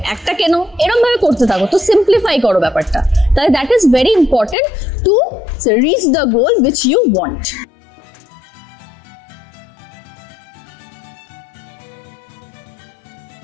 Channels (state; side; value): drops out; right; at 4.5 s